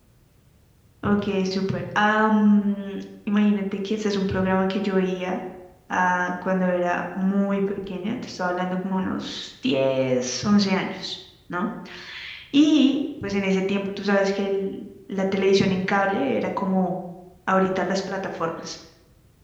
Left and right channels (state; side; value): identical; both; correlation 1.00